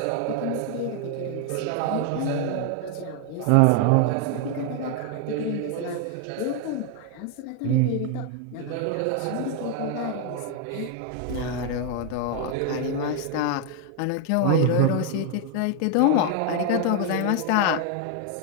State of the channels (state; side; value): different; both; correlation 0.00